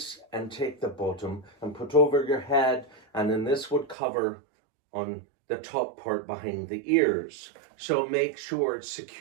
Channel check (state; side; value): drops out; left; at 4.0 s